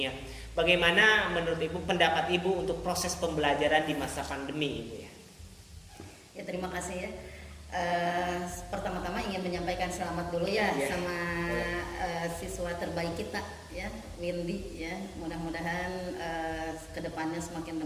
Bagaimana menurut Ibu, pendapat Ibu untuk proses pembelajaran di masa pandemi Ibu ya? Ya, terima kasih ya. Pertama-tama ingin menyampaikan selamat dulu ya, Ya. sama siswa terbaik kita ya, Windy ya. Mudah-mudahan kedepannya semakin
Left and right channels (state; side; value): identical; both; correlation 1.00